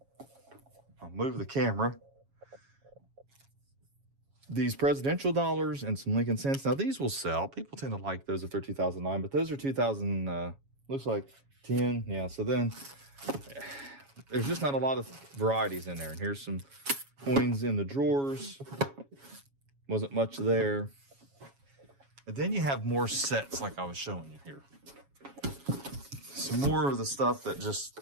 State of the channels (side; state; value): left; late; 7.2 ms